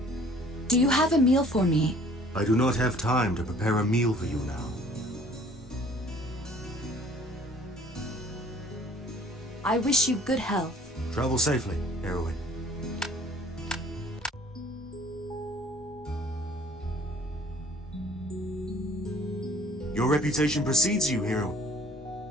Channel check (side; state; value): both; normal; correlation 0.54